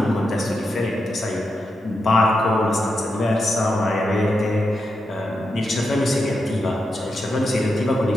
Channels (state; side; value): normal; both; correlation 0.86